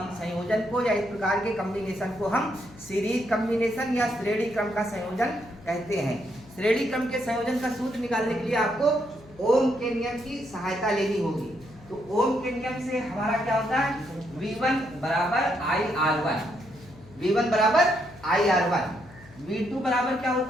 को या इस प्रकार के कॉम्बिनेशन को हम सीरीज कॉम्बिनेशन या श्रेणी क्रम का संयोजन कहते हैं। श्रेणी क्रम के संयोजन का सूत्र निकालने के लिए आपको ओम के नियम की सहायता लेनी होगी। तो ओम के नियम से हमारा क्या होता है, V1 बराबर IR1, V1 बराबर IR1, V2 बराबर क्या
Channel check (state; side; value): noise; left; hum, 21 dB below the sound